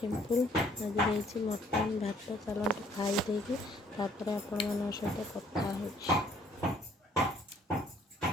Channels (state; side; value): normal; both; correlation 0.60